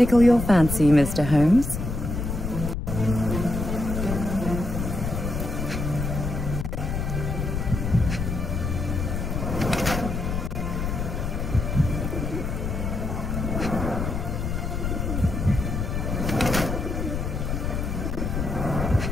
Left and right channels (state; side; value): noise; left; rumble, 2 dB below the sound